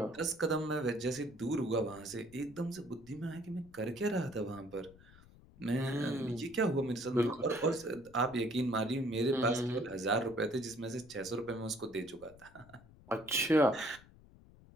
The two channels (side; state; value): left; noise; rumble, 23 dB below the sound